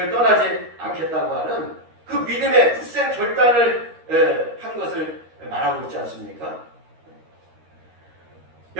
떠나지 않겠다고 하는 그 믿음의 굳센 결단을 한 것을 말하고 있지 않습니까?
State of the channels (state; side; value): late; left; 13 ms